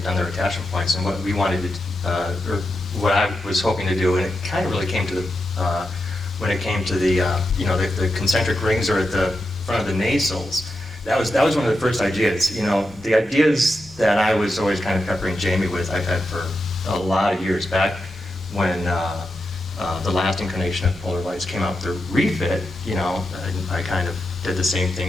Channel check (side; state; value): both; normal; correlation 0.88